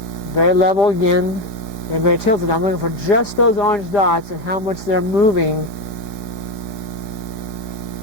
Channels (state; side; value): late; right; 4.7 ms